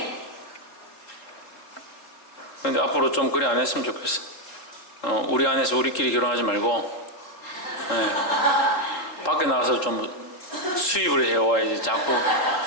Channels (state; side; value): late; right; 3.9 ms